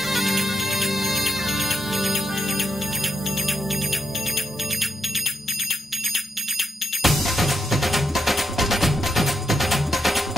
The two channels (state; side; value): normal; both; correlation 0.81